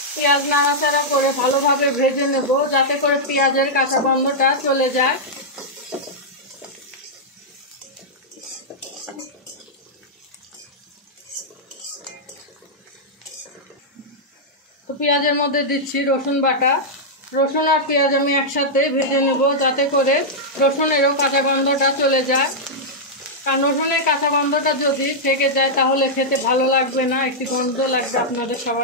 পেঁয়াজ নাড়াচাড়া করে ভালোভাবে ভেজে নেব যাতে করে পেঁয়াজের কাঁচা গন্ধটা চলে যায়। তো পেঁয়াজের মধ্যে দিচ্ছি রসুন বাটা। রসুন আর পেঁয়াজ আমি একসাথে ভেজে নেব যাতে করে রসুনেরও কাঁচা গন্ধটা চলে যায়। কারণ রসুনের কাঁচা গন্ধটা যদি থেকে যায় তাহলে খেতে ভালো লাগবে না, একটি গন্ধ লাগবে আপনাদের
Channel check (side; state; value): both; normal; correlation -0.08